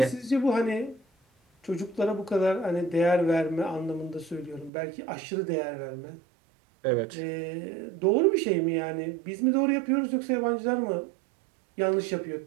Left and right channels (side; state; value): left; drops out; at 4.7 s